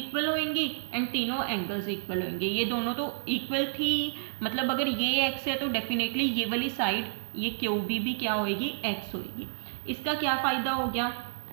होंगी एंड तीनों एंगल्स इक्वल होंगे। ये दोनों तो इक्वल थी, मतलब अगर ये x है तो डेफिनेटली ये वाली साइड ये QB भी क्या होगी, x होगी। इसका क्या फ़ायदा हो गया,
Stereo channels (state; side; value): silent; left; digital silence